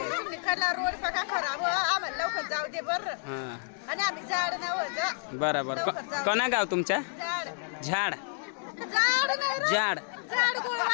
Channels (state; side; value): silent; right; 58 dB below the other